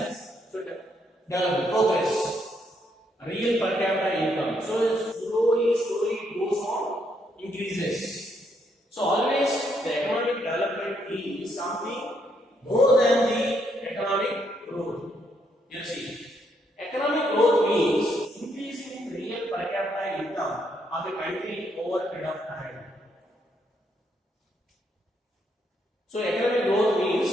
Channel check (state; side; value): normal; both; correlation 0.74